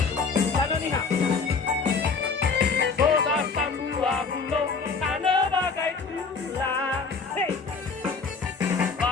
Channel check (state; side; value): quieter; right; 4.9 dB